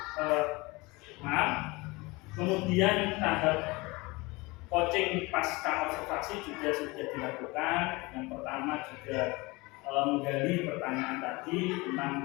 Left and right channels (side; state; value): right; quieter; 23.9 dB